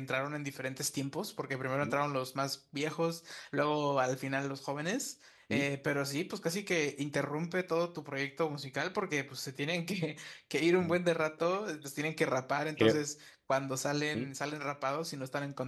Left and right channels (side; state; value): both; identical; correlation 1.00